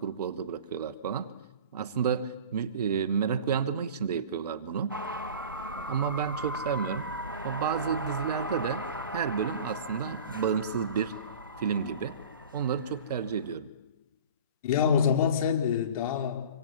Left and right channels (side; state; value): both; inverted; correlation -0.38